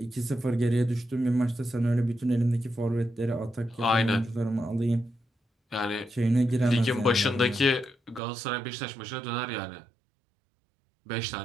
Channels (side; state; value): left; drops out; at 8.2 s